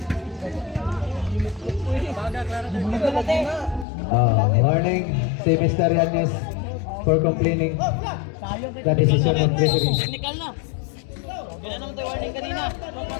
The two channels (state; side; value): drops out; right; at 3.9 s